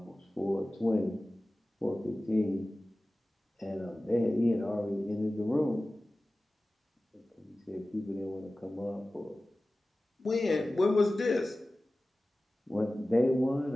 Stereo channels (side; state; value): both; normal; correlation 0.96